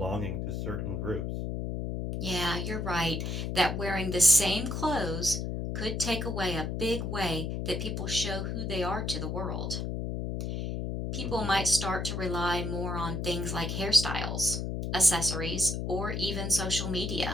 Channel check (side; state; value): left; noise; hum, 3 dB below the sound